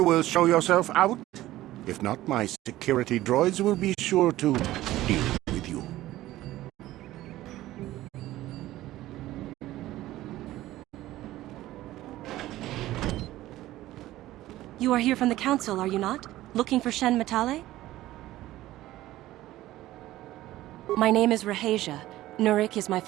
will show yourself out. If not, my security droids will be sure to deal with you. You are here from the council, are you not? Looking for Shen Matale? My name is Rahasia. Nurek is my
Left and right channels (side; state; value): left; quieter; 15.6 dB